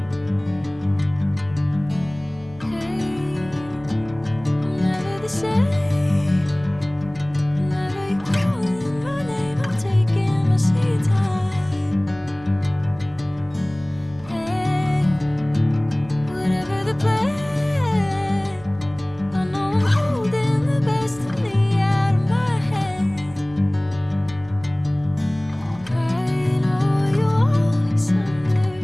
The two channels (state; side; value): noise; right; hum, 22 dB below the sound